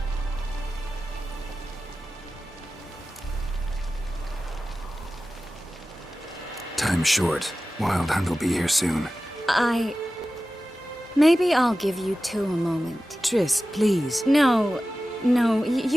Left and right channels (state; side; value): normal; both; correlation 0.95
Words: Time's short. Wild Hunt will be here soon. Maybe I'll give you two a moment. Triss, please. No,